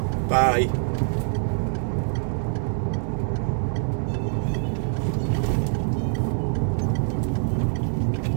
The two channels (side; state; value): left; silent; 62 dB below the other